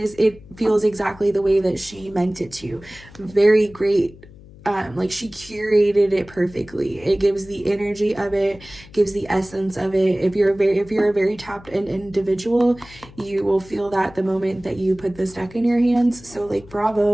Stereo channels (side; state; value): left; noise; hum, 21 dB below the sound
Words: it feels exactly the way that she meant it to. Very great. Like she curated it perfectly. It gives the energy of it, gives the essence of it. If you're a very tapped in individual, you will feel that the moment that you put this deck in your hands. So like,